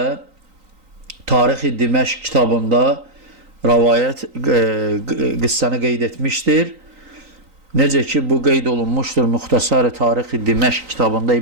Tarix-i Diməşq kitabında rəvayət qıssəni qeyd etmişdir. Necə ki, bu qeyd olunmuşdur Muxtasar-ı Tarix-i Diməşq kitabında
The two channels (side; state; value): left; late; 3.9 ms